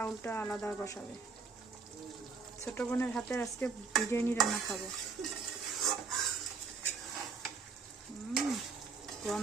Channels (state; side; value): quieter; left; 4.9 dB